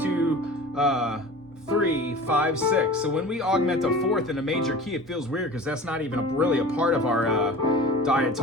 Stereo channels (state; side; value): normal; both; correlation 0.38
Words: 3, 5, 6. So when we augment a 4th in a major key, it feels weird because that's not even really a part of our